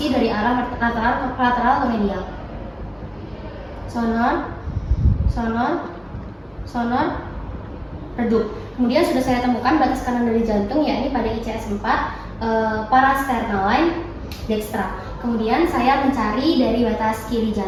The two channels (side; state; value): both; identical; correlation 1.00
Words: dari arah lateral ke medial. Sonor, sonor, sonor, redup. Kemudian sudah saya temukan batas kanan dari jantung, yakni pada ICS 4, parasternal line dextra. Kemudian saya mencari dari batas kiri